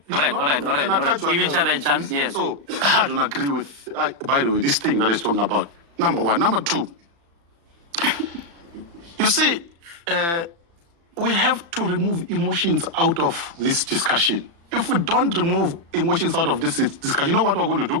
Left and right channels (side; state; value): left; late; 35 ms